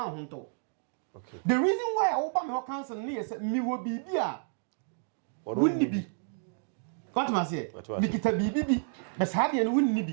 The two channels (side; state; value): left; silent; digital silence